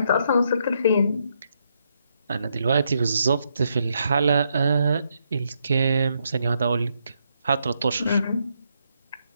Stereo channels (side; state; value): both; inverted; correlation -0.78